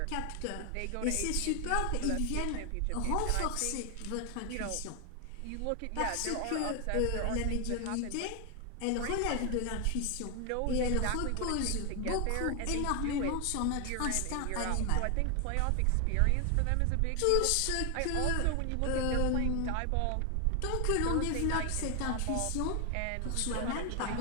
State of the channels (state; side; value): different; both; correlation 0.00